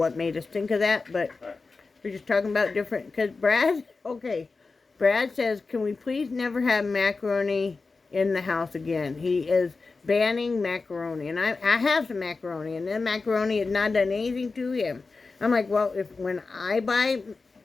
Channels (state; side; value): quieter; right; 4.1 dB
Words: made us think of that, but we're just talking about different, because Brad says, can we please never have macaroni in the house again? He is banning macaroni, and I have some macaroni, and then macaroni has not done anything to him. I'm like, well, when I buy